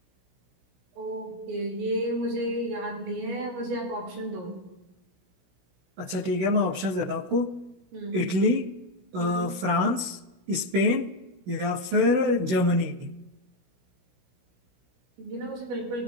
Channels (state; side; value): late; left; 16 ms